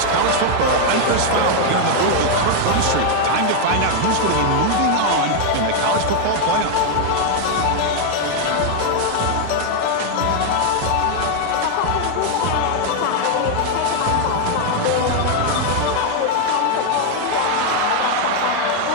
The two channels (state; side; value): different; both; correlation 0.01